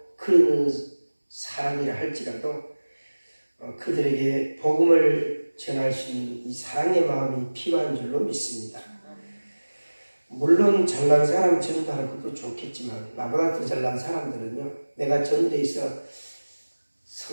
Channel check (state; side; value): inverted; both; correlation -1.00